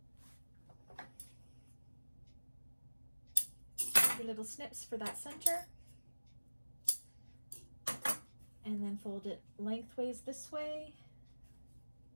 Your little snips for that center. And then fold it lengthways this way.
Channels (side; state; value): both; inverted; correlation -1.00